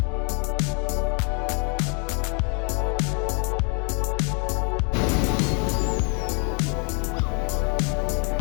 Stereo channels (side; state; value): right; quieter; 36.2 dB